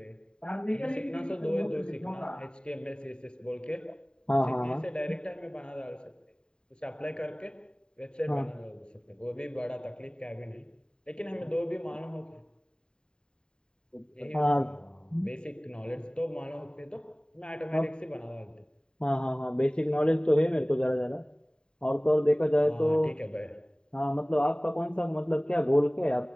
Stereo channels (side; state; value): right; late; 0.049 ms